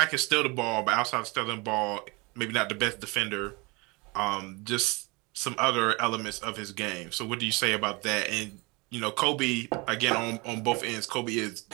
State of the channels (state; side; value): quieter; left; 27.1 dB